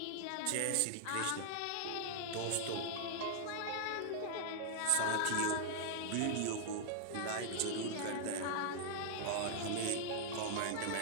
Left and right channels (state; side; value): different; both; correlation -0.01